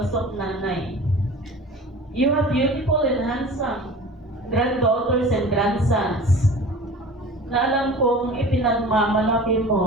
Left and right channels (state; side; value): normal; both; correlation 0.39